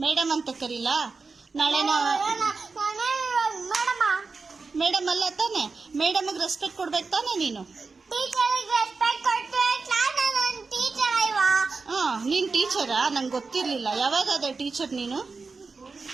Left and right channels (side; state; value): left; quieter; 4.4 dB